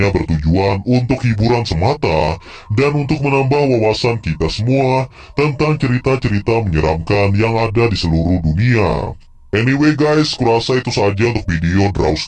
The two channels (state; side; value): identical; both; correlation 1.00